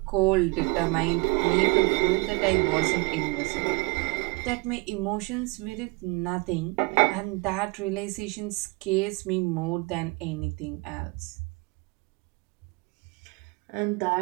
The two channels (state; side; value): quieter; left; 26.8 dB